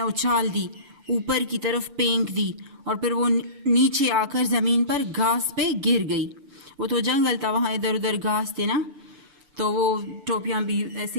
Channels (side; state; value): left; late; 6.9 ms